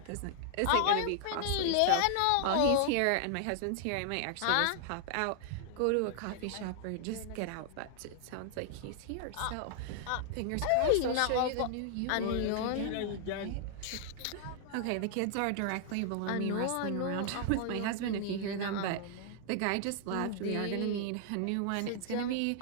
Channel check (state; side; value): different; both; correlation -0.01